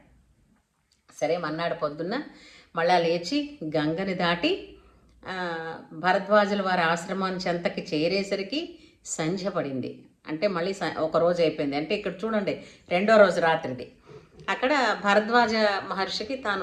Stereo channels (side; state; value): both; identical; correlation 1.00